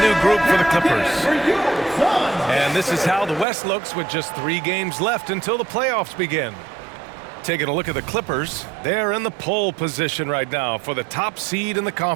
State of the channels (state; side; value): drops out; left; at 3.5 s